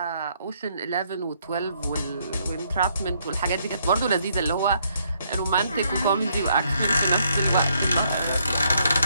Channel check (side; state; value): both; inverted; correlation -0.71